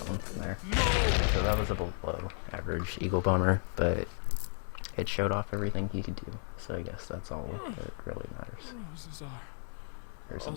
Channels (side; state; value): right; silent; 55 dB below the other